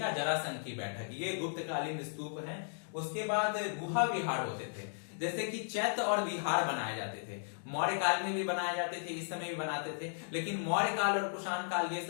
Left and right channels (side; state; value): right; silent; digital silence